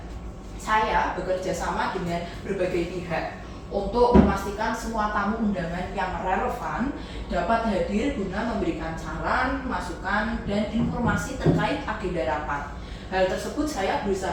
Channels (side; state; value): both; identical; correlation 1.00